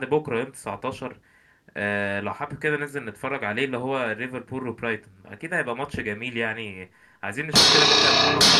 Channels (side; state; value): both; identical; correlation 1.00